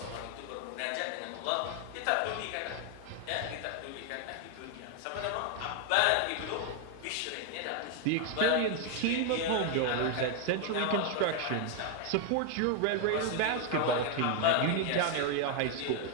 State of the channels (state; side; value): different; both; correlation 0.01